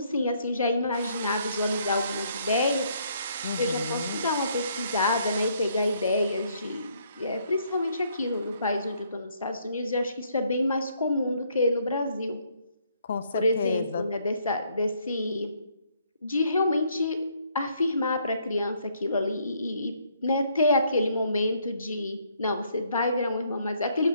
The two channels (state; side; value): inverted; both; correlation -0.69